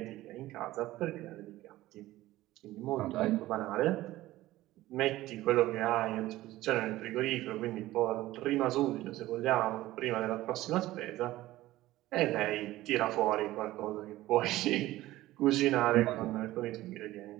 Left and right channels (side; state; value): left; quieter; 16.4 dB